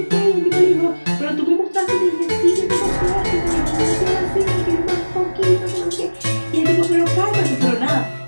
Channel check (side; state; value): both; inverted; correlation -1.00